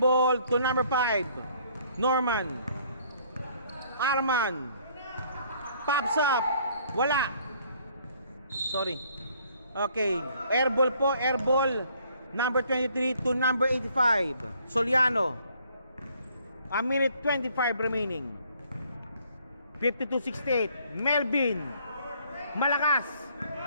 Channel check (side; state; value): both; inverted; correlation -0.62